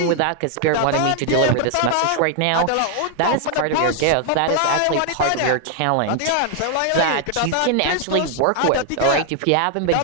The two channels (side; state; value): both; different; correlation 0.00